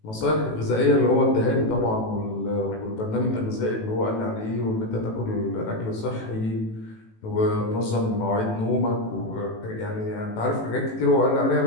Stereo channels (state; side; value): late; right; 18 ms